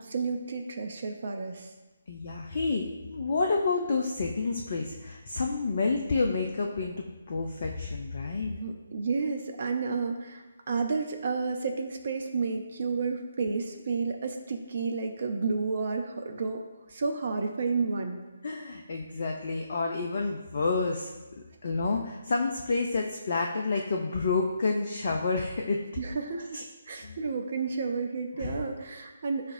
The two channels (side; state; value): both; inverted; correlation -0.76